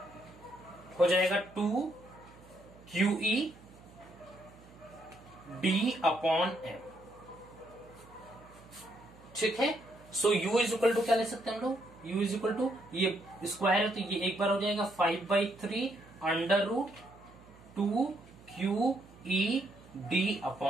हो जाएगा 2 q e d upon M, ठीक है। So u is equal to क्या ले सकते हैं हम लोग, यू इज इक्वल टू ये स्क्वायर है तो ये एक बार हो जाएगा 5/3 under root 2 q e d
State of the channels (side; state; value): right; noise; hum, 23 dB below the sound